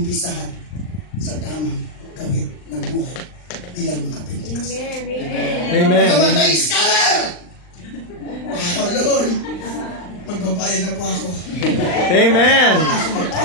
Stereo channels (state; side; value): late; right; 39 ms